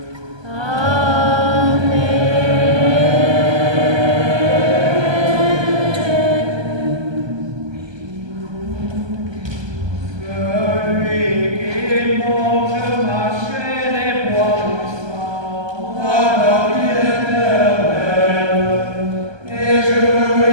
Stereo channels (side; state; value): left; late; 1.2 ms